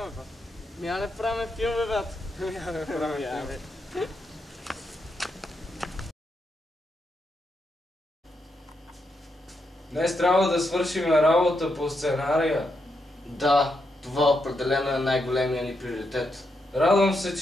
брат. Я не правим филми, брат. Я не правим филми. Днес трябва да свършим работа по сценария. Да, това определено е най-големия ни приоритет. Радвам се,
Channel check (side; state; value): both; normal; correlation 0.82